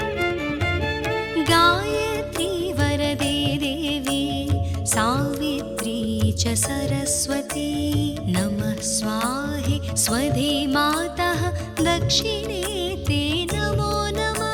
गायत्री वरदे देवी सावित्री च सरस्वती नमः स्वाहे स्वधे मातः दक्षिणे ते नमो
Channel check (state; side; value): identical; both; correlation 1.00